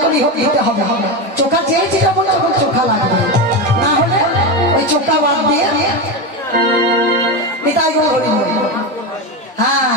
করে দিতে হবে। চোখা চেয়েছি তখন তখন চোখা লাগবে, না হলে ওই চোখা বাদ দিয়ে হ্যাঁ।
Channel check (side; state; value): both; normal; correlation 0.15